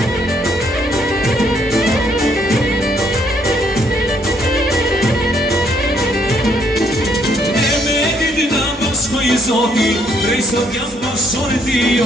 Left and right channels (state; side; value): normal; both; correlation 0.69